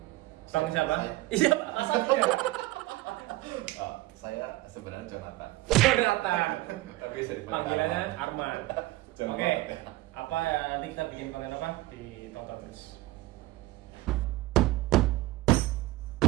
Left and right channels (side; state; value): left; quieter; 18.3 dB